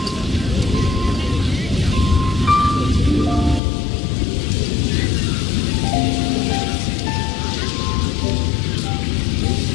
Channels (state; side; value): drops out; right; at 3.6 s